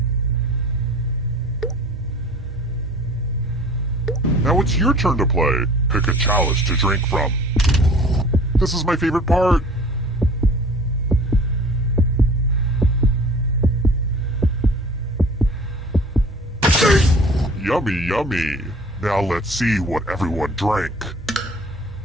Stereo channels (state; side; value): normal; both; correlation 0.46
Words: Now it's your turn to play. Pick a chalice to drink from. This is my favorite part. Yummy, yummy. Now let's see what everyone drank.